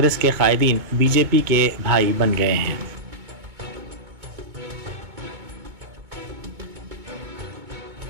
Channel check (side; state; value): left; late; 2.2 ms